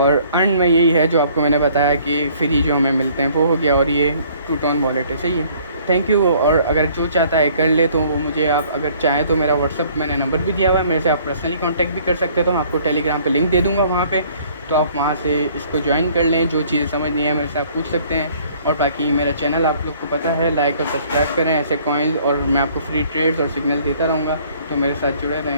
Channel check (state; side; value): inverted; both; correlation -0.58